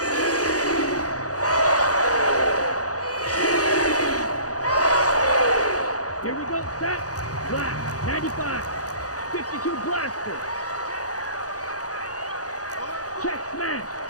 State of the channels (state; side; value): late; right; 0.67 ms